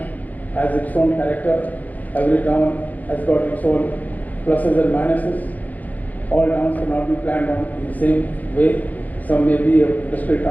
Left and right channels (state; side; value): late; right; 0.080 ms